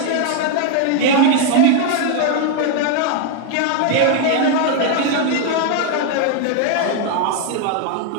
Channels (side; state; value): both; different; correlation 0.00